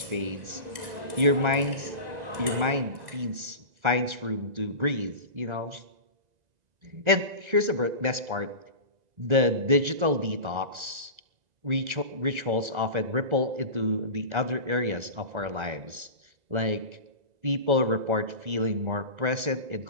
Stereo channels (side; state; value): left; late; 1.3 ms